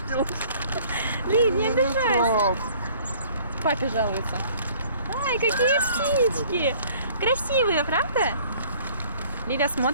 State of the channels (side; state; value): both; inverted; correlation -0.55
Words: Лив, не обижайся. Папе жалуется. Ай, какие птички. Красивые, правда? Лиля